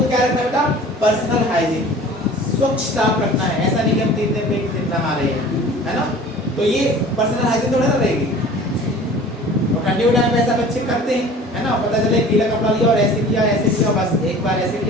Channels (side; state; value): both; normal; correlation 0.44